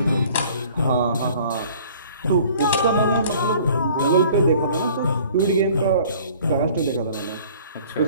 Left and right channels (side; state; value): both; inverted; correlation -0.51